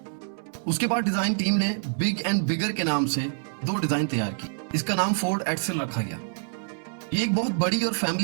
उसके बाद design team ने big and bigger के नाम से 2 डिजाइन तैयार की। इसका नाम फोर्ड एक्सेल रखा गया। ये एक बहुत बड़ी और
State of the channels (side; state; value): left; silent; 61 dB below the other